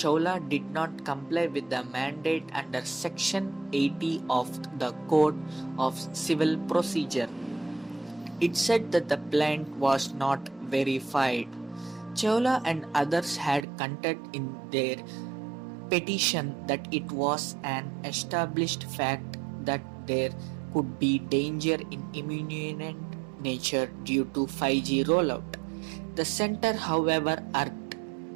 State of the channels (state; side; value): drops out; left; at 13.7 s